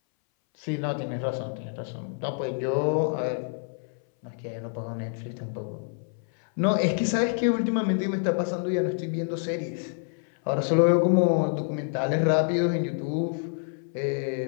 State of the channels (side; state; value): right; silent; 60 dB below the other